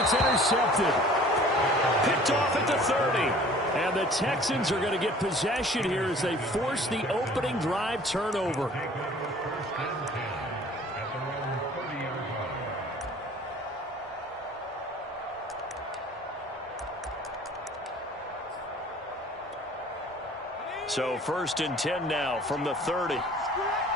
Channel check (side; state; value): both; normal; correlation 0.50